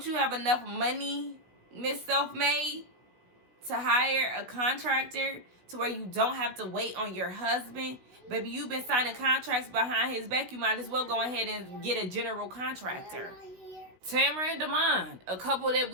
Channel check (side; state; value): left; late; 16 ms